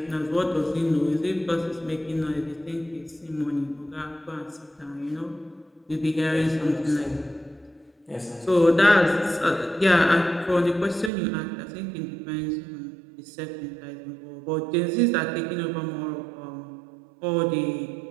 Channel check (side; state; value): left; drops out; at 11.1 s